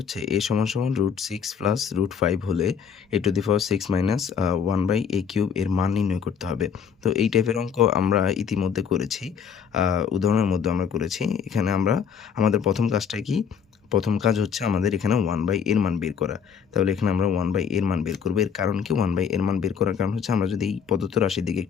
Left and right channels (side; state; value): right; quieter; 7.1 dB